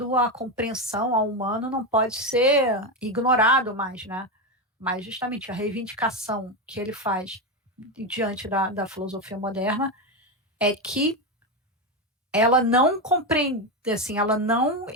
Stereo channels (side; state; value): both; normal; correlation 0.12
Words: à compreensão ao humano não pode ser ignorado mais, né? Mas justamente a reivindicação que ele faz diante da filosofia moderna é que ela não compreende, assim, ela não